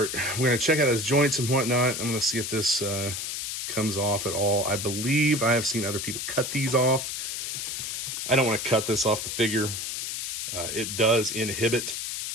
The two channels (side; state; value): left; noise; hiss, 4 dB below the sound